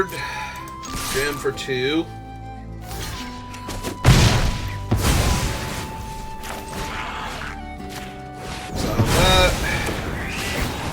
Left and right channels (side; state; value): both; identical; correlation 1.00